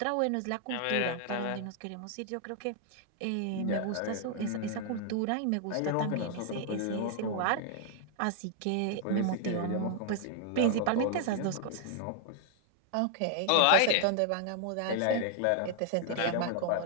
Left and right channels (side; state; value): both; different; correlation 0.00